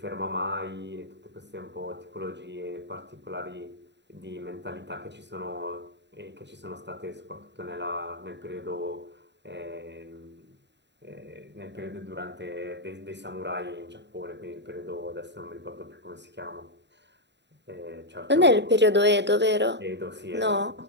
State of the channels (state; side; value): late; left; 0.51 ms